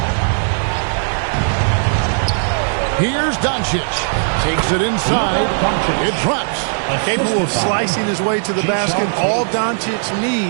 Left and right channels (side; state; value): left; silent; 68 dB below the other